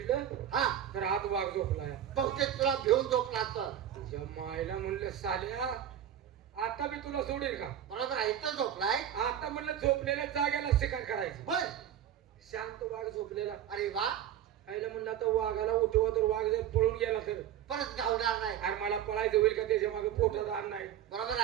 हा तर हात वाघ झोपलाय. बहुतेक तुला घेऊन झोपला असतं. तुझ्या मायला म्हणलं साल्या, आता मी तुला सोडेल का? बरोबर आहे. इथं झोपलाय. आता म्हणलं झोपलेल्या जागेला शिकार करायची. बर. शांत वाघ झोपलेला. अरे वा. आईला म्हणलं आता वाघाला उठवा, तर वाघ जर पळून गेला तर परत गावणार नाही. अरे मला पळायचं होईल का? त्याच्या मागे पोटात अन्न नाही. बरोबर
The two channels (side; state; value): left; quieter; 10.4 dB